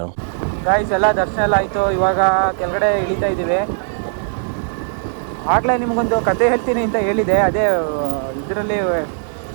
ಗಾಯ್ಸ್ ಎಲ್ಲ ದರ್ಶನ ಎಲ್ಲ ಆಯಿತು. ಇವಾಗ ಕೆಳಗಡೆ ಇಳಿತಾ ಇದ್ದೀವಿ. ಆಗಲೇ ನಿಮಗೊಂದು ಕತೆ ಹೇಳ್ತೀನಿ ಅಂತ ಹೇಳಿದೆ. ಅದೇ ಇದರಲ್ಲಿ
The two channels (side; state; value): left; silent; digital silence